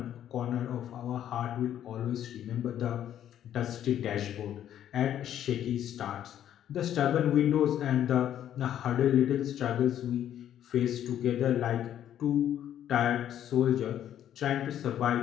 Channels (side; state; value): right; quieter; 10.8 dB